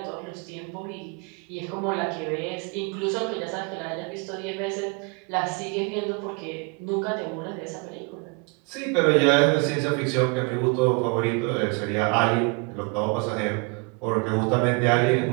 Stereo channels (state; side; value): quieter; left; 32.3 dB